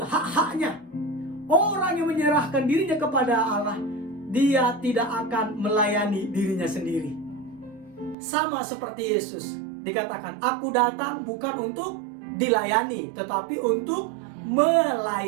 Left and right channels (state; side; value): drops out; left; at 8.2 s